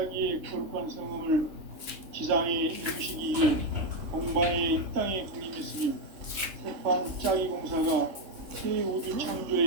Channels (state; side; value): late; left; 3.3 ms